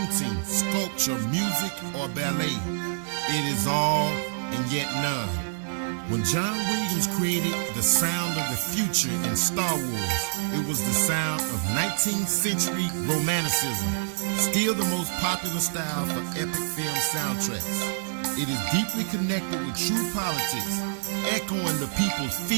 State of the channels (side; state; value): left; silent; 60 dB below the other